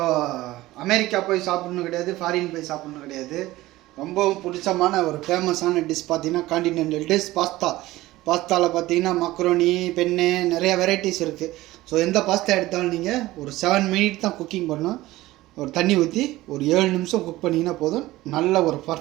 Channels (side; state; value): left; quieter; 17.4 dB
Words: அமெரிக்கா போய் சாப்பிட்ணும் கிடையாது, ஃபாரின் போய் சாப்பிட்ணும் கிடையாது. ரொம்பவும் பிடிச்சமான ஒரு ஃபேமஸான டிஷ் பார்த்தீங்கன்னா காண்டினென்டல் டிஷ் பாஸ்தாவில் பார்த்தீங்கன்னா மக்ரோனி, பென்னு, நிறைய வெரைட்டிஸ் இருக்குது. ஸோ எந்த பாஸ்தா எடுத்தாலும் நீங்கள் ஒரு 7 மினிட் தான் குக்கிங் பண்ணணும். ஒரு தண்ணி ஊற்றி ஒரு 7 நிமிஷம் குக் பண்ணிங்கன்னா போதும், நல்ல ஒரு